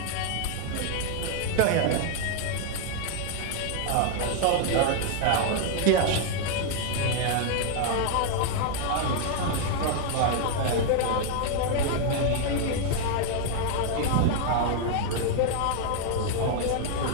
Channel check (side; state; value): both; different; correlation 0.00